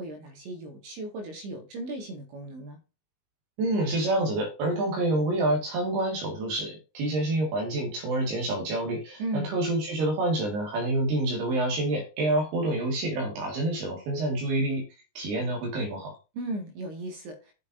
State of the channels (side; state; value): left; late; 19 ms